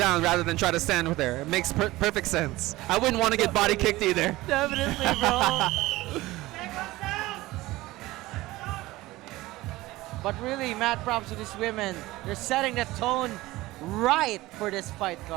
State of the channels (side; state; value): left; quieter; 18.6 dB